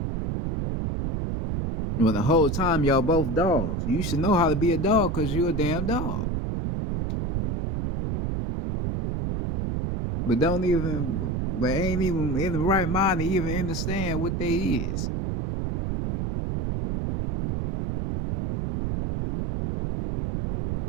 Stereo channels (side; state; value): right; noise; rumble, 2 dB below the sound